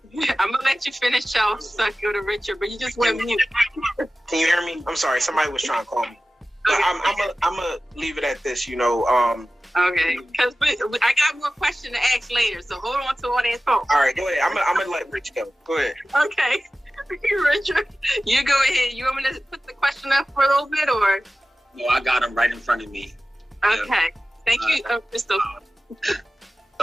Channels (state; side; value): normal; both; correlation 0.96